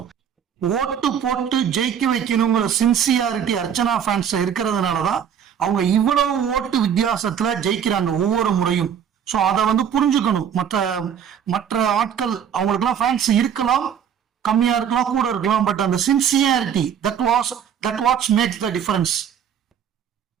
ஓட்டு போட்டு ஜெயிக்க வைக்கணுங்கிற சின்சியாரிட்டி அர்ச்சனா ஃபேன்ஸ் இருக்கிறதுனாலதான் அவங்க இவ்வளவு ஓட்டு வித்தியாசத்துல ஜெயிக்கிறாங்க ஒவ்வொரு முறையும். ஸோ அதை வந்து புரிஞ்சுக்கணும். மற்ற ஆட்கள் அவங்களுக்குலாம் ஃபேன்ஸ் இருக்கலாம், கம்மியா இருக்கலாம், கூட இருக்கலாம், பட் அந்த sincerity that what's makes the difference.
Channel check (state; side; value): quieter; left; 8.5 dB